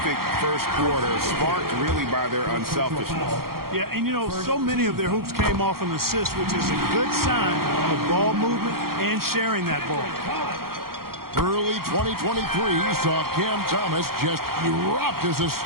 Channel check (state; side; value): late; left; 0.93 ms